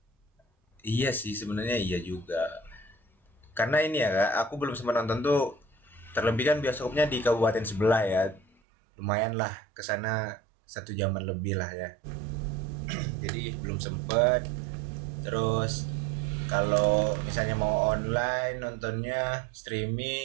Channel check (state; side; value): drops out; left; at 8.5 s